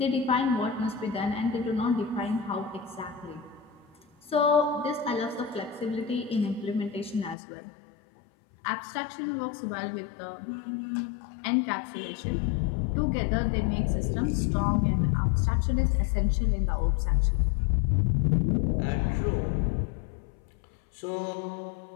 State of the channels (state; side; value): drops out; right; at 7.4 s